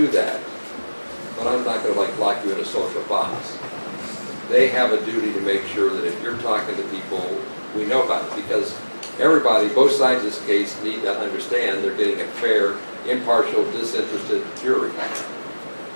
that. But I'm not going to lock you in a social box. They have a duty to make sure that if you're talking to people, we know about it, because everybody, both sides of this case, need to understand they're getting a fair, impartial, disinterested jury.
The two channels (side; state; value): both; inverted; correlation -1.00